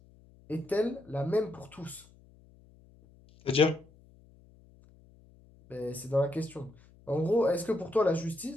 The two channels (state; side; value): noise; left; hum, 26 dB below the sound